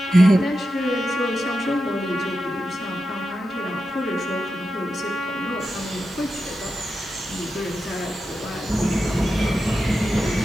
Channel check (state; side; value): normal; both; correlation 0.90